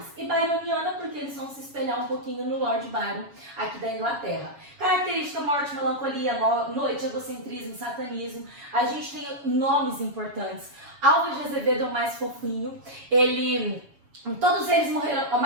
E byroniana, porque eles vão se espelhar um pouquinho no Lord Byron, aqui da Inglaterra. Característica, morte, melancolia, noite, egocentrismo, satanismo. A gente tem nomes importantes. Álvares de Azevedo é o mais fofinho. Todos eles morreram, a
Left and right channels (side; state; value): left; late; 7.2 ms